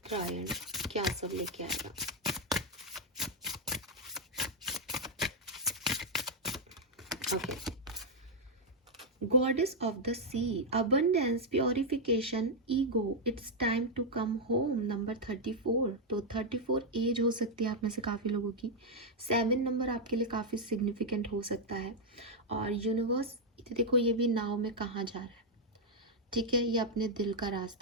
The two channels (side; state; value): both; normal; correlation -0.01